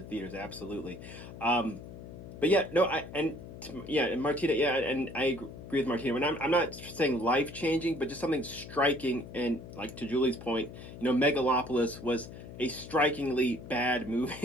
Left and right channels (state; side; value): noise; left; hum, 13 dB below the sound